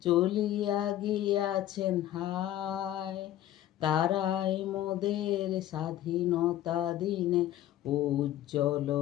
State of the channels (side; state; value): right; quieter; 12.9 dB